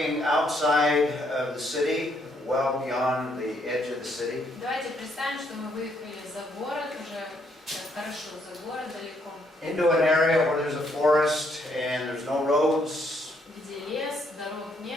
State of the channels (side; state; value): both; normal; correlation 0.71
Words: outside of the city, well beyond the edge of the city. Давайте представим, что мы выехали за город, уже хорошо за город, далеко. Into an area where there's a forest and there's no roads, Где лес, дорог